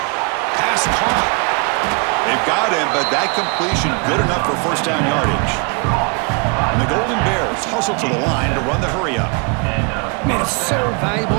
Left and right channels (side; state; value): left; quieter; 33.8 dB